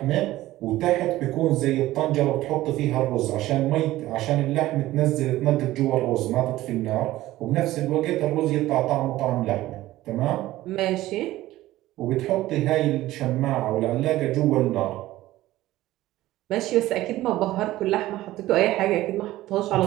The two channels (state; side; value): quieter; left; 16.1 dB